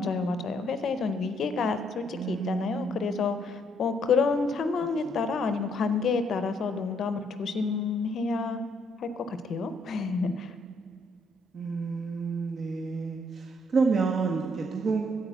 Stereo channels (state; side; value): normal; both; correlation 0.70